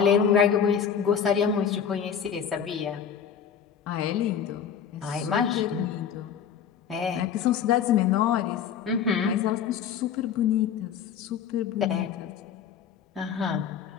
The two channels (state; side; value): quieter; right; 7.9 dB